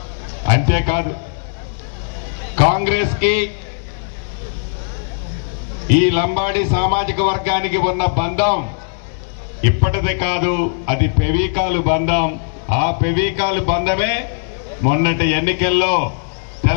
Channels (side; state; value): right; silent; digital silence